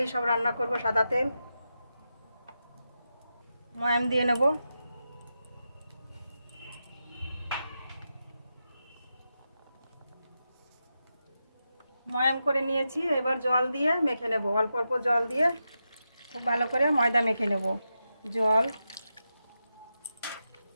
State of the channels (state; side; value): inverted; both; correlation -0.88